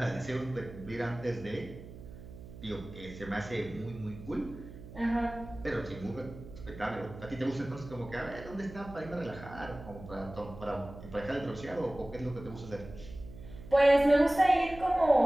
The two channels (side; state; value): right; noise; hum, 15 dB below the sound